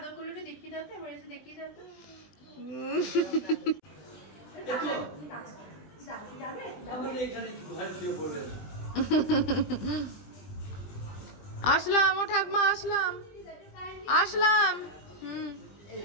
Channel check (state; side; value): late; right; 20 ms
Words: আসলাম, ও ঠাকমা আসলাম।